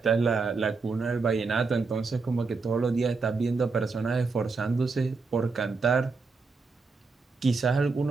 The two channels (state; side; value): quieter; left; 4.3 dB